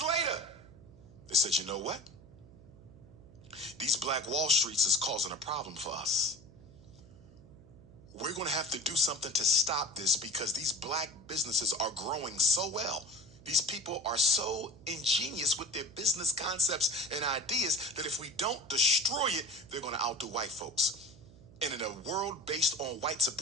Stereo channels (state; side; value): noise; right; hum, 21 dB below the sound